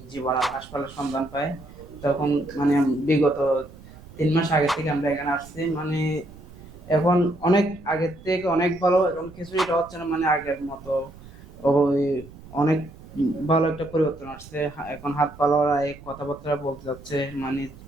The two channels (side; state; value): right; noise; rumble, 19 dB below the sound